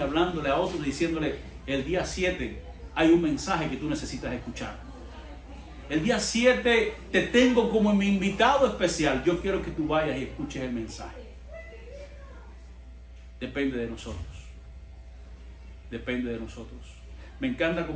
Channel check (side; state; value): both; identical; correlation 1.00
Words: a otros, diciéndole, el día 7 hay un mensaje que tú necesitas escuchar. El día 7 te tengo como mi invitado especial. Yo quiero que tú vayas y escuches el mensaje. Depende de nosotros. Depende de nosotros. Me encanta